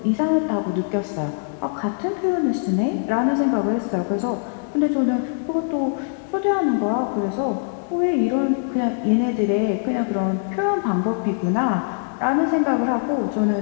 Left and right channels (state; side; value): silent; right; digital silence